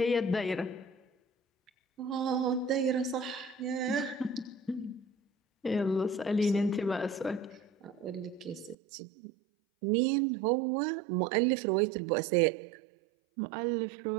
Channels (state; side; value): drops out; left; at 8.8 s